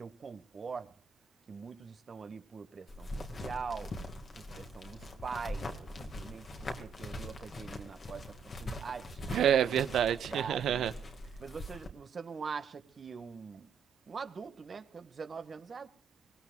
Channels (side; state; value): left; quieter; 6.3 dB